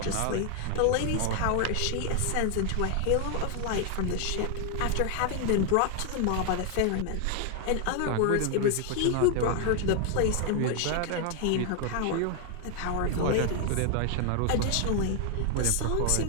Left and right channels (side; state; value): both; different; correlation 0.00